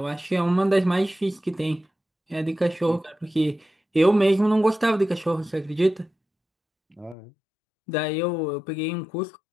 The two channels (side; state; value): right; drops out; at 7.2 s